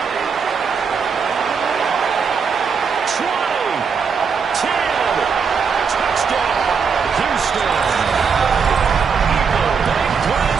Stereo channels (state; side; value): quieter; left; 6.0 dB